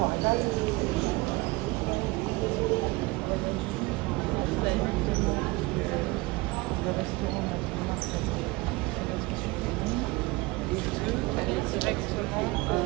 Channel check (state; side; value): quieter; left; 23.1 dB